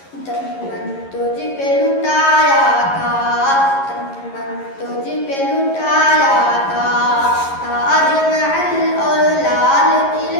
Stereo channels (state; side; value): late; right; 11 ms